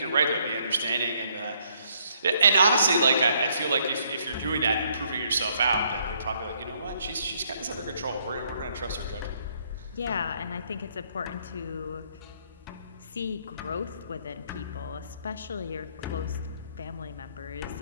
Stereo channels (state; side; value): inverted; both; correlation -0.69